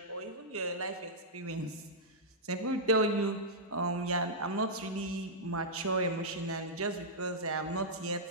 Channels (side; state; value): both; normal; correlation -0.11